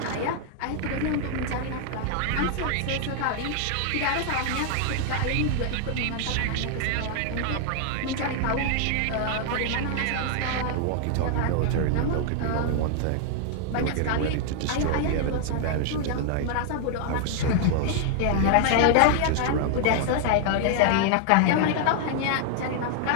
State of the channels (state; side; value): different; both; correlation 0.00